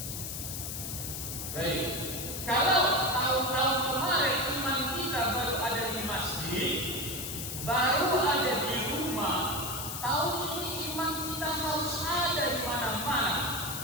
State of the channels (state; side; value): noise; left; hiss, 5 dB below the sound